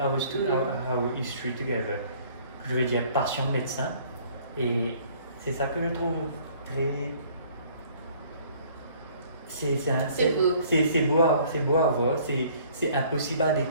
history together. Je veux dire, passion de médecin. Et c'est ça que je trouve très... C'est beau à voir. C'est impossible à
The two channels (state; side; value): inverted; both; correlation -0.57